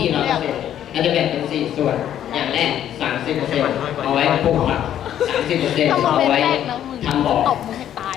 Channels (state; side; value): quieter; right; 10.8 dB